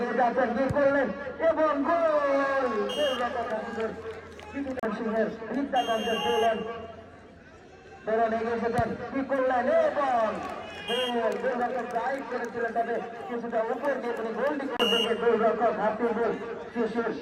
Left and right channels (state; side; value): identical; both; correlation 1.00